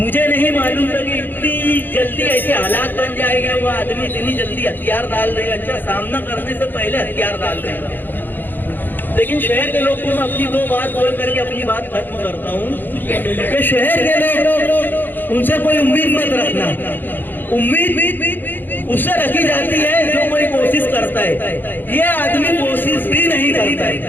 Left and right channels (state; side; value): late; right; 0.091 ms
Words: नहीं मालूम था कि इतनी जल्दी ऐसे हालात बन जाएंगे, वो आदमी इतनी जल्दी हथियार डाल देगा। अच्छा, सामना करने से पहले हथियार डाल देगा। लेकिन शहर के लोग को मैं अपनी 2 बात बोल करके अपनी बात खत्म करता हूँ कि शहर के लोग, उनसे कोई उम्मीद मत रखना। उम्मीद उससे रखी जाती है जो कोई कोशिश करता है। ये आदमी कोशिश भी नहीं करता है।